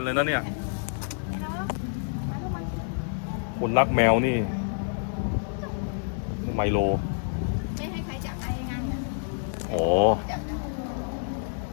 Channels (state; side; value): silent; right; 58 dB below the other